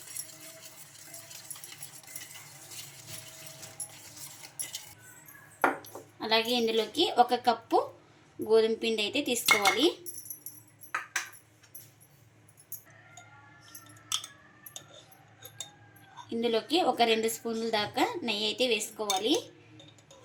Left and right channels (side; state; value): both; identical; correlation 1.00